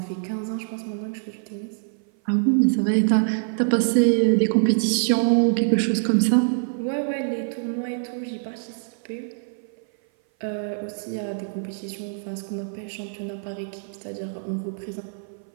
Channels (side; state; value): left; silent; 57 dB below the other